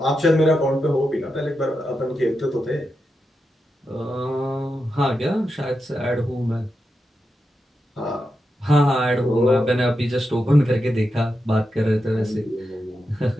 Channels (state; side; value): normal; both; correlation 0.87